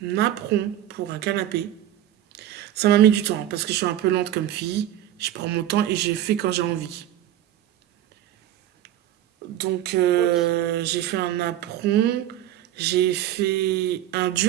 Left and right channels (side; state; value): left; quieter; 12.3 dB